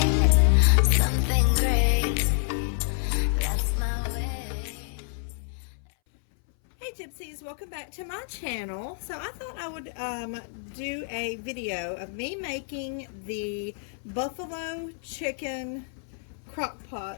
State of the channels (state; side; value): silent; right; 59 dB below the other